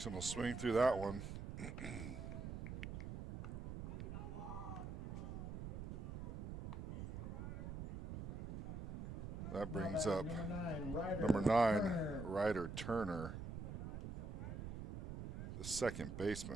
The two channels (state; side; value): noise; right; rumble, 6 dB below the sound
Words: will swing through that one. That brings up number 9, Ryder Turner, the second